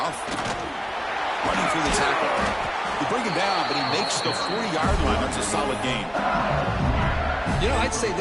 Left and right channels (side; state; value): both; identical; correlation 1.00